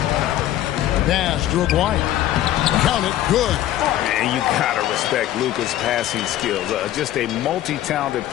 Pass to Aguayo. Count it. Good. And you gotta respect Luka's passing skills. Just a multi-talented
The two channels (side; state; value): right; quieter; 13.2 dB